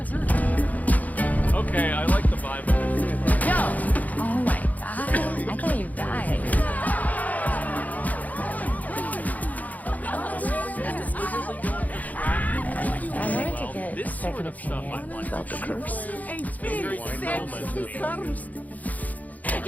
Okay, I like the vibe of this. No! Oh my God. I thought you died. I wanted to get This sort of stuff I like. About the curse. It's very You're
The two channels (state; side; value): late; right; 0.078 ms